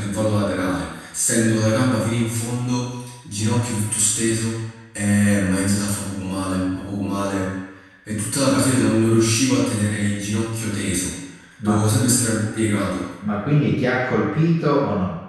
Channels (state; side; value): identical; both; correlation 1.00